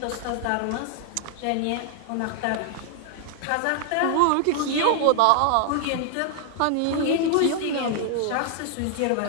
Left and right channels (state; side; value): different; both; correlation 0.00